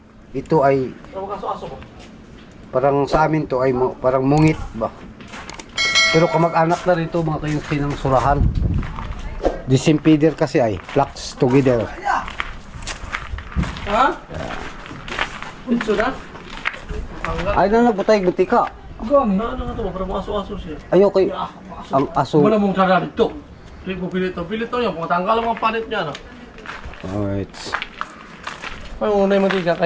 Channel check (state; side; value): identical; both; correlation 1.00